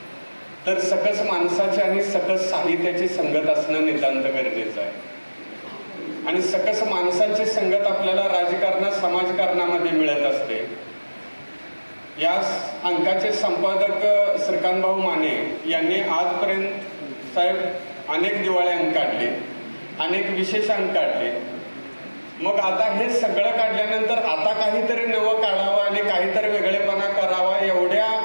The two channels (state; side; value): inverted; both; correlation -1.00